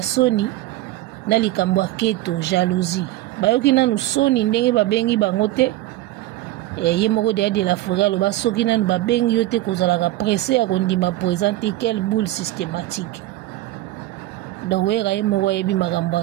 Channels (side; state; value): left; quieter; 16.2 dB